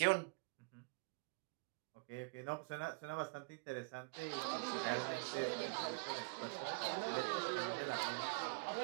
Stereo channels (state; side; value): quieter; left; 31.8 dB